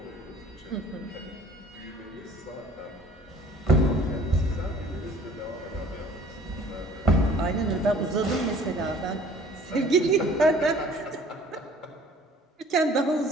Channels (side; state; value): both; normal; correlation 0.52